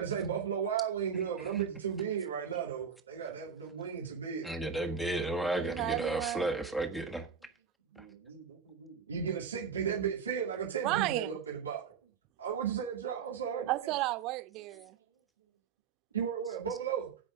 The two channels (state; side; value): quieter; left; 6.6 dB